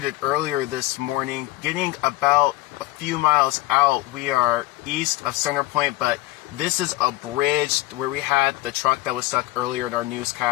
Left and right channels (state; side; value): quieter; right; 19.0 dB